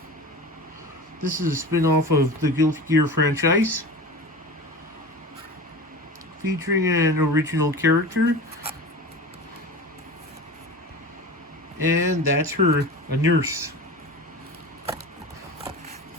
This is a spin-off of the Guilty Gear franchise, featuring an original character, and that's her, a nurse.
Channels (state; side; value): normal; both; correlation 0.32